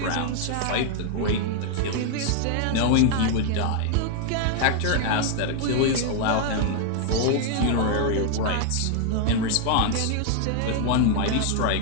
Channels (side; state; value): both; different; correlation 0.00